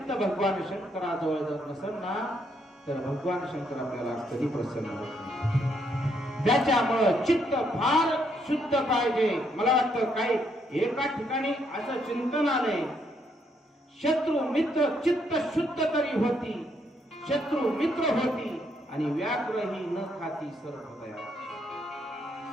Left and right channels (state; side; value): normal; both; correlation 0.74